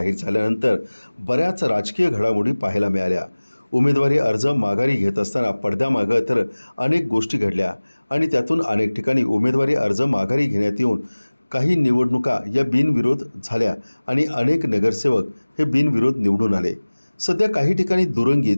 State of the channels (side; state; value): both; inverted; correlation -1.00